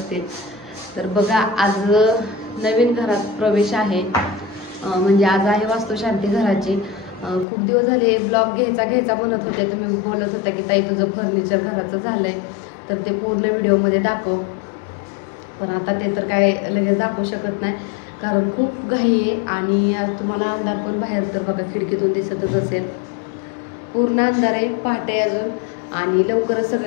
तर बघा, आज नवीन घरात प्रवेश आहे. म्हणजे आज आहे वास्तुशांती घराची. खूप दिवस झाले ब्लॉग घ्यायचा म्हणत होते. तुम्ही बोलत होता की ताई तुझं फर्निचर घराचं झालंय, तर ते पूर्ण व्हिडिओमध्ये दाखव. पण आता ते तर काय लगेच दाखवू शकत नाही, कारण खूप घाई आहे. आणि आज तुम्हाला अंधार पण बाहेर तर बघा खिडकीतून दिसतच असेल. पूर्ण अंधार आहे, पहाटे अजून. आणि लवकरच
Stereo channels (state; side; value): drops out; right; at 7.5 s